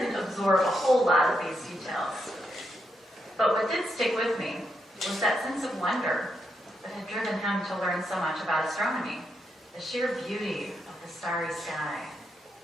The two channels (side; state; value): both; normal; correlation 0.81